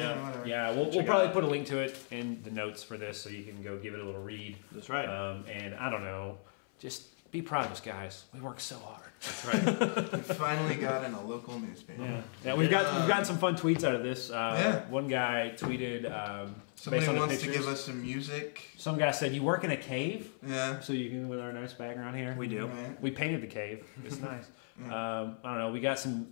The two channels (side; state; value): right; silent; 54 dB below the other